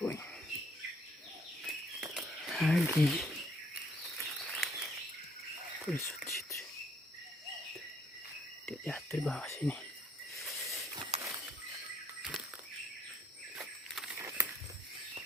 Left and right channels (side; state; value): both; normal; correlation 0.66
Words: poin lagi. Dia jatuh di bawah sini.